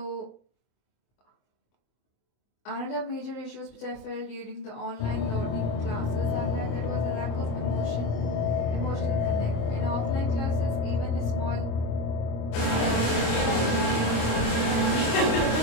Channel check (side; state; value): right; late; 26 ms